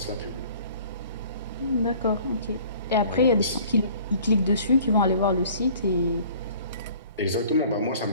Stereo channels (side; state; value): both; inverted; correlation -0.51